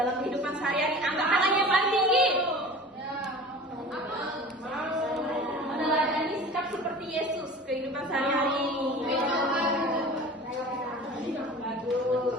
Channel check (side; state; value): both; normal; correlation 0.39